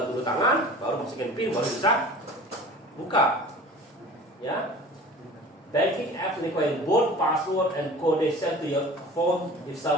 dulu tangan, baru masukin PIN, baru bisa buka. Ya. Banking apps require both password and code sent to your phone. If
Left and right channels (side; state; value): both; normal; correlation 0.41